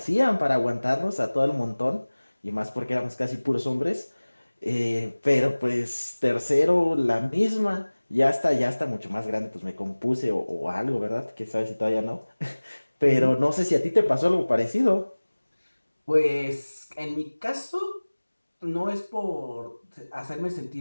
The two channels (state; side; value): inverted; both; correlation -1.00